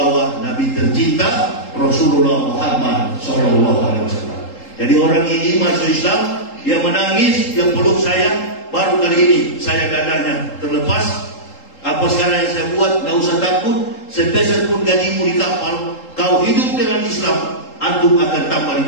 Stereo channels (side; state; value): right; late; 3.8 ms